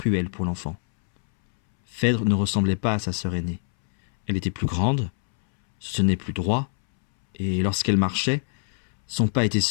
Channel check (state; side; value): silent; right; 63 dB below the other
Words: pour l'enfant. Phèdre ne ressemblait pas à sa sœur aînée. Elle était plus grande, se tenait plus droit, et lorsqu'elle marchait, son pas était